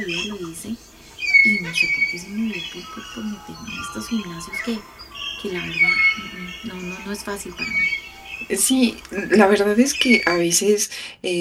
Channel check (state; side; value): identical; both; correlation 1.00